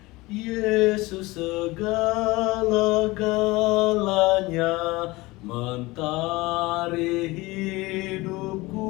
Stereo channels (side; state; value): right; quieter; 21.5 dB